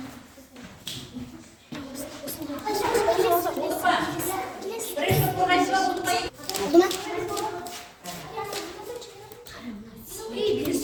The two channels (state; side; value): identical; both; correlation 1.00